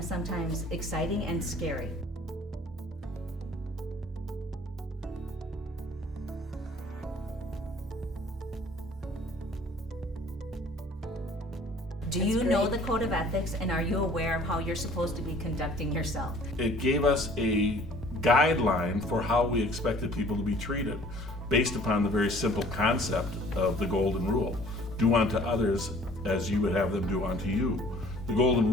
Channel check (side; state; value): both; normal; correlation 0.53